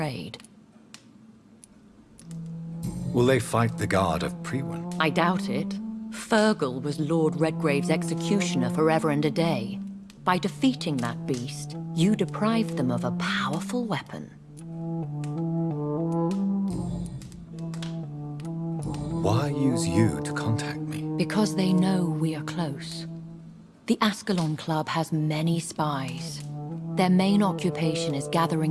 Will they fight the guard of Priwen? I doubt it. Fergal was Lord Redgrave's executioner forever and a day. By defeating that beast, you deprived them of a powerful weapon. Why use you to contact me? Because they know we are close. The Ascalon Club has many spies. Their main occupation is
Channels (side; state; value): both; identical; correlation 1.00